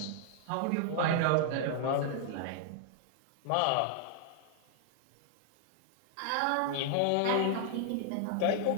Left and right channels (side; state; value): both; different; correlation 0.00